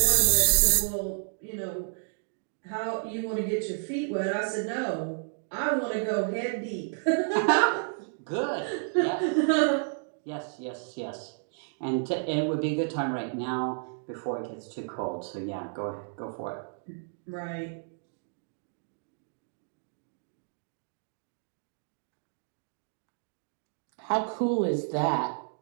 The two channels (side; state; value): left; silent; digital silence